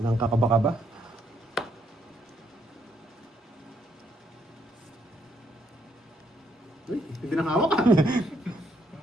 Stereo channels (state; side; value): normal; both; correlation 0.73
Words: kakaba-kaba. Uy, hindi nang hawak ah.